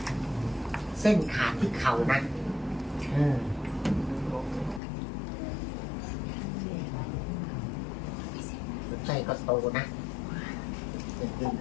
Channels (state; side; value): drops out; right; at 4.8 s